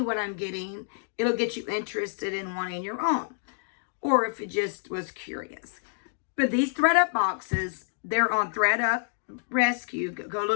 what I'm getting, it'll get you interested in wanting your own. Or if it just was curious. But these Thredup boxes, they're on Thredup Rescue. Go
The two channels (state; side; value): silent; right; digital silence